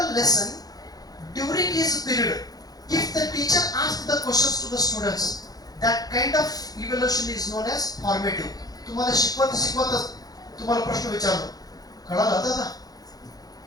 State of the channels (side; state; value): right; late; 0.18 ms